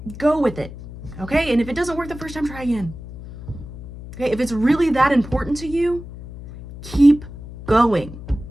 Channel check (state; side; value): noise; left; hum, 13 dB below the sound